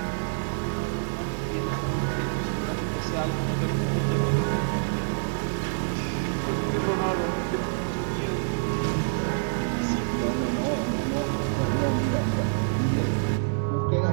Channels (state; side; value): silent; left; digital silence